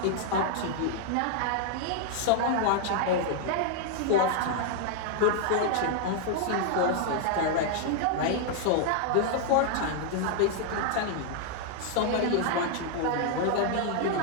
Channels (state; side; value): different; both; correlation 0.00